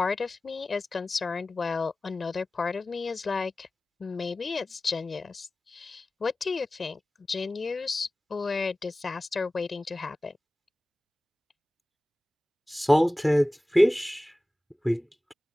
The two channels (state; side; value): normal; both; correlation 0.97